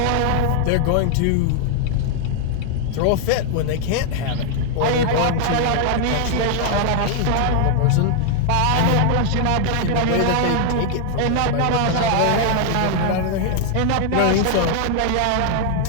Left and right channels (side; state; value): both; different; correlation 0.00